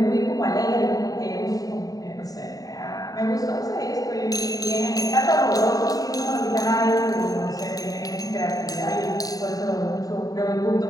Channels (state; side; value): late; right; 0.18 ms